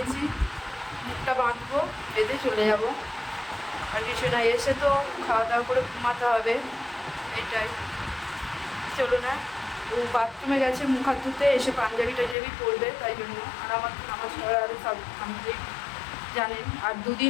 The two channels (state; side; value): drops out; right; at 12.4 s